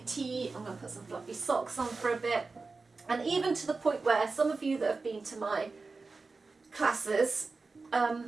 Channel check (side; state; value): left; quieter; 4.0 dB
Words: tea. I'm going to put some fluffy socks on for a bit. And even to the point where some of you that have been to my classes,